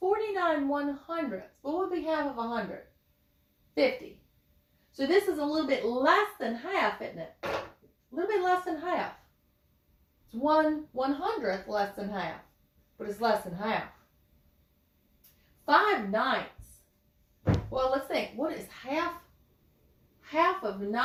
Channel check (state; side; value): identical; both; correlation 1.00